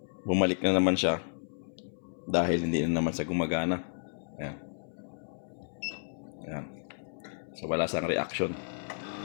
bumalik na naman siya dahil hindi na naman sa gumagana. Ayan. Ayan. So wala siyang reaction.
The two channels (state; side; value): silent; right; 56 dB below the other